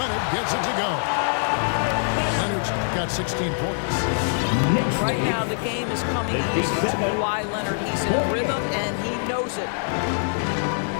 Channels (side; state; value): right; silent; digital silence